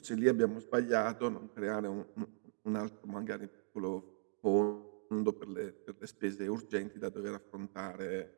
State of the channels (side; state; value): left; silent; digital silence